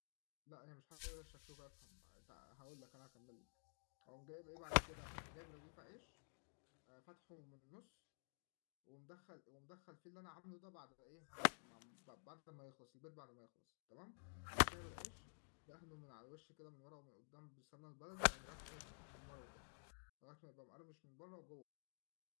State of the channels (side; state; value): right; silent; digital silence